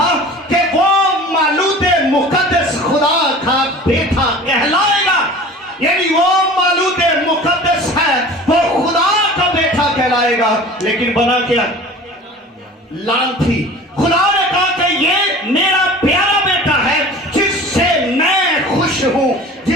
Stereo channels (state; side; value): normal; both; correlation 0.41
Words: کہ وہ مولود مقدس خدا کا بیٹا کہلائے گا، یعنی وہ مولود مقدس ہے، وہ خدا کا بیٹا کہلائے گا، لیکن بنا کیا؟ لانتی۔ خدا نے کہا کہ یہ میرا پیارا بیٹا ہے جس سے میں خوش ہوں،